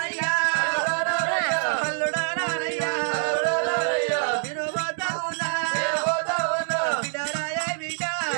అల్లుడా నానయ్యా నేను పోతా ఉన్నా బిడ్డరాయ బిడ్డ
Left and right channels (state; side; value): silent; left; digital silence